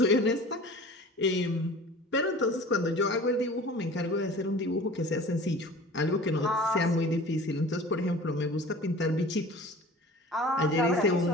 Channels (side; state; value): both; normal; correlation 0.42